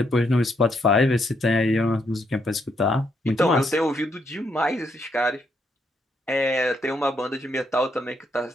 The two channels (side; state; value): both; normal; correlation 0.76